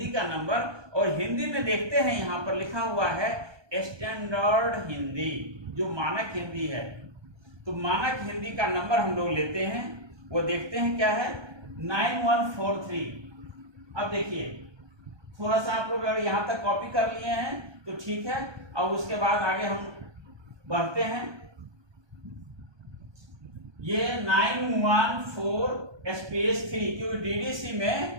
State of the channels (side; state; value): left; late; 1.2 ms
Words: का नंबर। और हिंदी में देखते हैं यहां पर लिखा हुआ है स्टैंडर्ड हिंदी, जो मानक हिंदी है। तो मानक हिंदी का नंबर हम लोग लेते हैं, वो देखते हैं क्या है 9143। अब देखिए थोड़ा सा आप लोग अगर यहां तक कॉपी कर लिए हैं तो ठीक है। और उसके बाद आगे हम बढ़ते हैं। ये 914 स्पेस 3, क्योंकि डीडीसी में